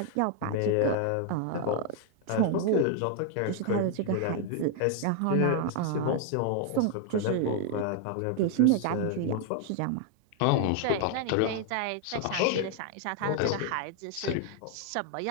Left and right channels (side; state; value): both; different; correlation 0.00